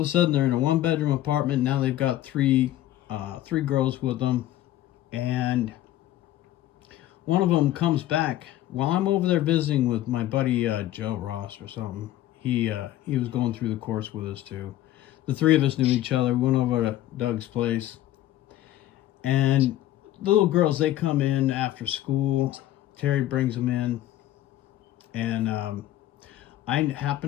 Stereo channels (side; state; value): right; quieter; 13.8 dB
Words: a sudden, they're in a 1-bedroom apartment. Now they've got 3 girls with them. And one of them comes back while I'm over there visiting with my buddy Joe Ross or something. He was going through the course with us too. The 3 of us knew each other. We went over to Doug's place. And the little girls, they come in after school. Terry brings them in. And I